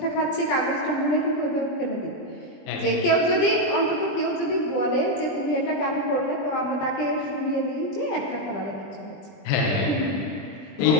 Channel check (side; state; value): right; late; 20 ms